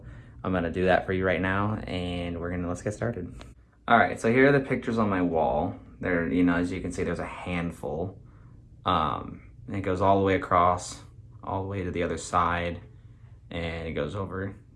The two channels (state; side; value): identical; both; correlation 1.00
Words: I'm gonna do that for you right now, and let's get started. All right, so here are the pictures on my wall. There, as you can see, there's a handful. And it goes all the way across, all the way to the other side, and it goes over